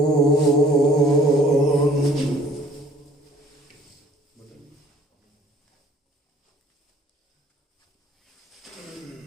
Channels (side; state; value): both; normal; correlation 0.56